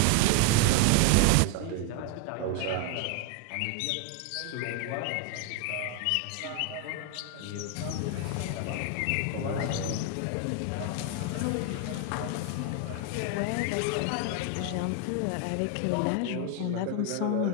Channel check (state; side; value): different; both; correlation 0.01